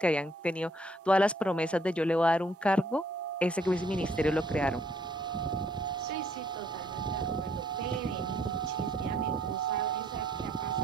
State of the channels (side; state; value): both; normal; correlation 0.65